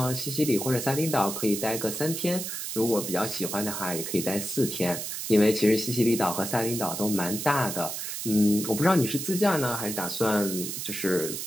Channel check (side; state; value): right; noise; hiss, 5 dB below the sound